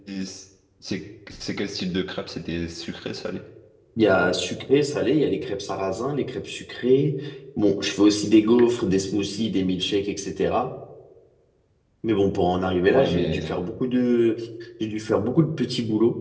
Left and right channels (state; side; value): identical; both; correlation 1.00